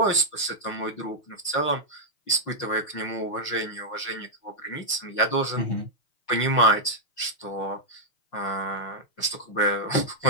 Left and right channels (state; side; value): late; right; 6.4 ms